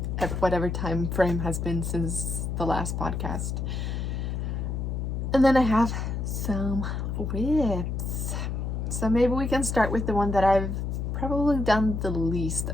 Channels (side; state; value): left; noise; hum, 2 dB below the sound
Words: whatever time frame has been since the last podcast. And then I have some whips. So maybe we can start with the one that I've probably done the least